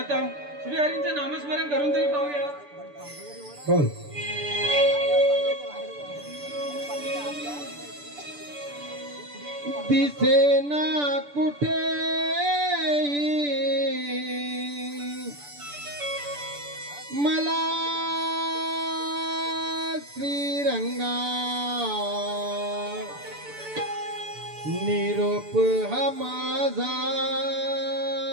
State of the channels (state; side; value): late; left; 6.9 ms